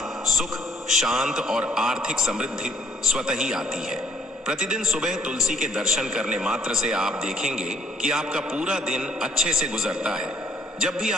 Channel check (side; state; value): both; normal; correlation 0.65